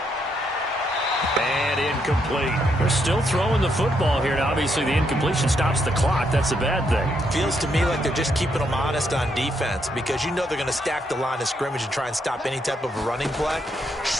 And incomplete. They're still throwing the football here. Now, obviously, the incompletion stops the clock. That's a bad thing. Feels to me like they're just keeping them honest on defense, because you know they're going to stack the line of scrimmage and try and stop any type of a running play.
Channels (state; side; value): normal; both; correlation 0.76